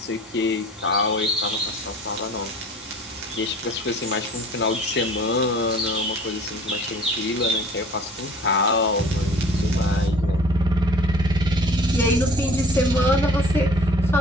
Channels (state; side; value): normal; both; correlation 0.48